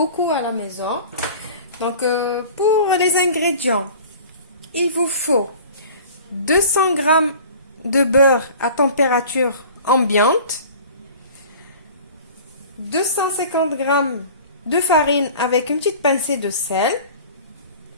à la maison. Donc pour les ingrédients, il vous faut 200 g de beurre à température ambiante, 250 g de farine avec une petite pincée de sel,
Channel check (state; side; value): inverted; both; correlation -0.43